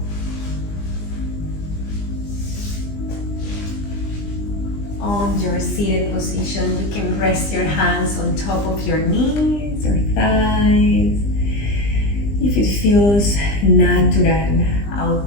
On your seated position, you can rest your hands on top of your knees or thighs. If it feels natural,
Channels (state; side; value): late; right; 20 ms